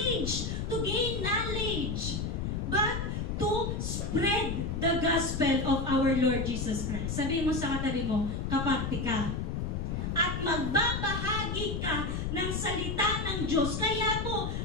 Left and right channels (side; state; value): left; noise; rumble, 2 dB below the sound